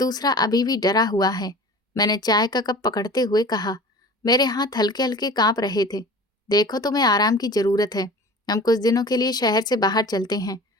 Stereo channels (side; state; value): both; normal; correlation 0.40